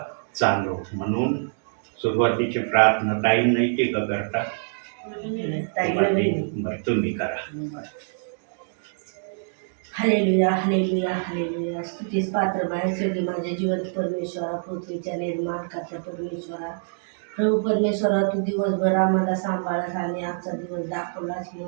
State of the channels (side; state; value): left; silent; digital silence